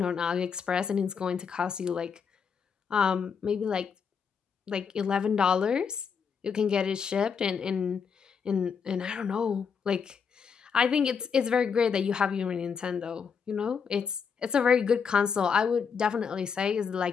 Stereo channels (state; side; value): quieter; right; 6.3 dB